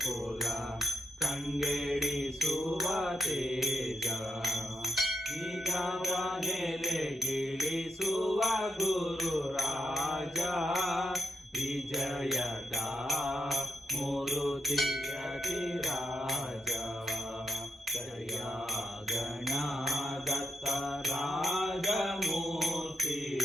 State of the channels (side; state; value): both; normal; correlation 0.82